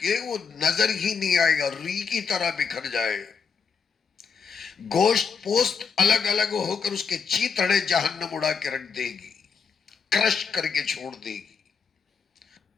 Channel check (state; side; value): quieter; right; 5.9 dB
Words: وہ نظر ہی نہیں آئے گا، ری کی طرح بکھر جائے، گوشت پوست الگ الگ ہو کر اس کے چیتھڑے جہنم اڑا کے رکھ دے گی، کرش کر کے چھوڑ دے گی۔